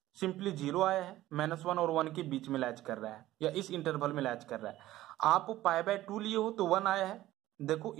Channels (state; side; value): quieter; left; 15.3 dB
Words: सिंपली 0 आया है, -1 और 1 के बीच में लैच कर रहा है या इस इंटरवल में लैच कर रहा है। आप π/2 लिए हो तो 1 आया है, देखो